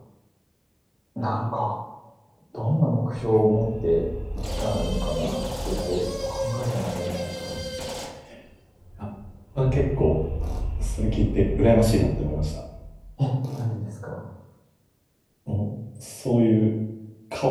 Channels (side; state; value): both; identical; correlation 1.00